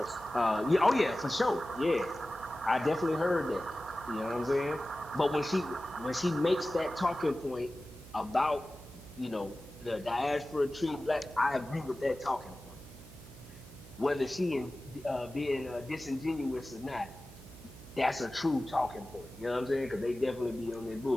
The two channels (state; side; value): noise; right; hum, 18 dB below the sound